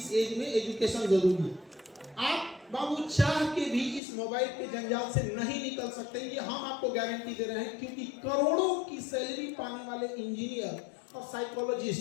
एज में एजुकेशन जरूरी है। आप बाबू चाह के भी इस मोबाइल के जंजाल से नहीं निकल सकते, ये हम आपको गारंटी दे रहे हैं, क्योंकि करोड़ों की सैलरी पाने वाले इंजीनियर और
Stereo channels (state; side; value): drops out; right; at 4.0 s